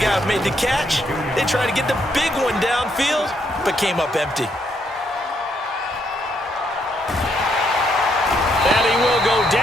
guy who made the catch. They tried to get the big one downfield, but came up empty. And he will go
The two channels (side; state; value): both; normal; correlation 0.74